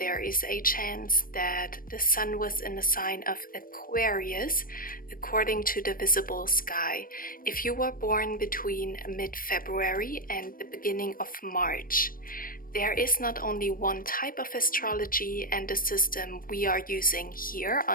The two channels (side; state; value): right; late; 0.41 ms